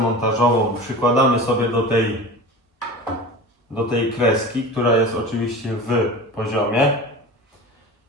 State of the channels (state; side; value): normal; both; correlation 0.34